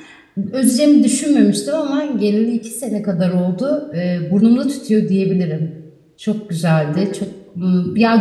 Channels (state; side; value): identical; both; correlation 1.00